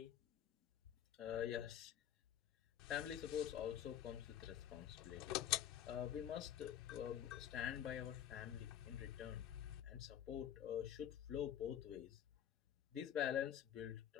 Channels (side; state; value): right; quieter; 10.3 dB